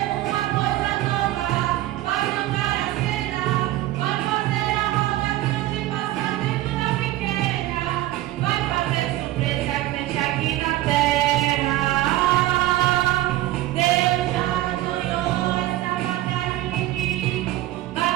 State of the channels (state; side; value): quieter; left; 15.8 dB